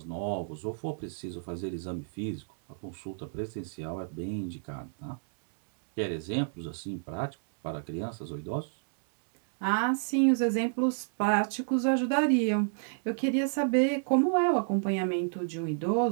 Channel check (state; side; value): silent; left; digital silence